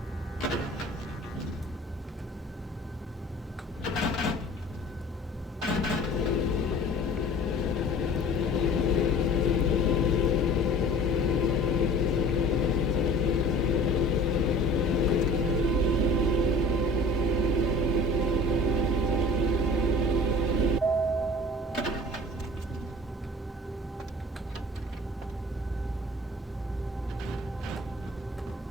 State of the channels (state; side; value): normal; both; correlation 0.45